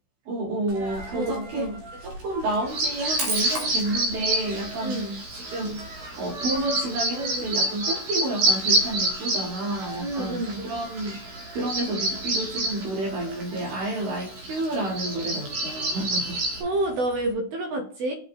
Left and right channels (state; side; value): late; left; 16 ms